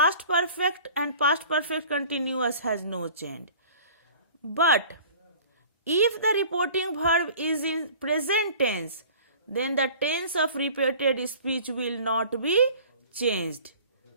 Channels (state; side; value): inverted; both; correlation -0.46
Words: perfect continuous has no change. But if the reporting verb is in present tense, then the tense of repeated speech will not be changed.